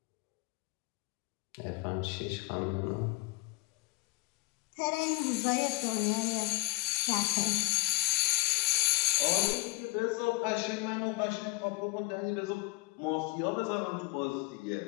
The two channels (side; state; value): right; quieter; 22.3 dB